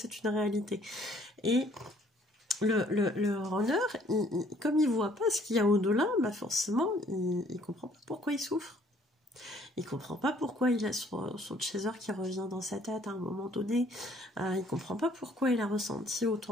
une réalité. Et le runner, comme il voit pas ce qu'il y a au-delà, bah forcément, il comprend pas pourquoi il souffre. Il comprend pas pourquoi il a son chaser qui revient dans sa tête à un moment donné. Il comprend pas pourquoi il a ressenti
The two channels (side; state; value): both; normal; correlation 0.61